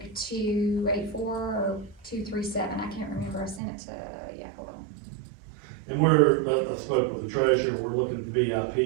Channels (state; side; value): drops out; left; at 3.6 s